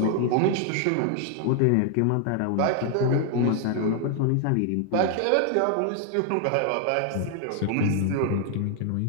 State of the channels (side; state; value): both; different; correlation 0.00